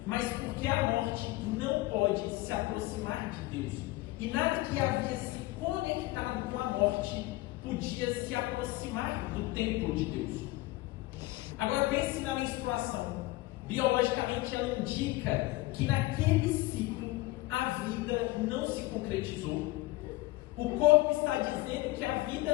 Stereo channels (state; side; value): quieter; right; 19.0 dB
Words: mas porque a morte não pode se aproximar de Deus. E nada que havia se conectado com a morte podia se aproximar do templo de Deus. Agora pense na menstruação. Biologicamente ela indica que naquele ciclo a vida não se concretizou. O corpo está dizendo que a